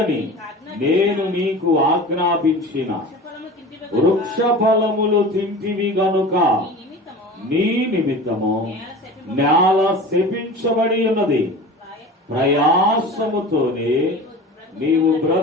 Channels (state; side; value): normal; both; correlation 0.36